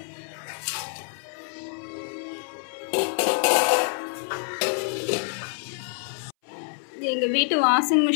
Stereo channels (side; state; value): right; silent; 60 dB below the other